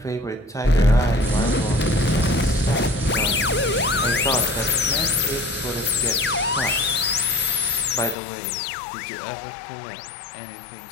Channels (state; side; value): drops out; right; at 8.2 s